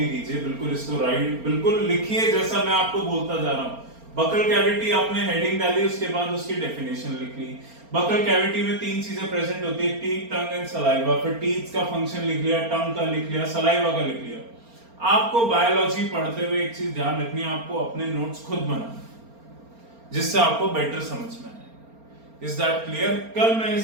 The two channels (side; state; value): left; late; 4.3 ms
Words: कीजिए। बिल्कुल इसको राइट बिल्कुल लिखिए जैसा मैं आपको बोलता जा रहा हूं। बकल कैविटी आपने हेडिंग डाली, उसके बाद उसकी डेफिनेशन लिख ली। बकल कैविटी में तीन चीजें प्रेजेंट होती है, टीथ, टंग एंड सलाइवा। फिर टीथ का फंक्शन लिख लिया, टंग का लिख लिया, सलाइवा का लिख लिया। आपको बायोलॉजी पढ़ते हुए एक चीज ध्यान रखनी है, आपको अपने नोट्स खुद बनाना जिससे आपको बेटर समझ में आए। Is that clear? कल मैं